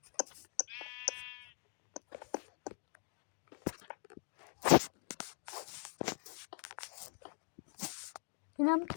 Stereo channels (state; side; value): silent; right; digital silence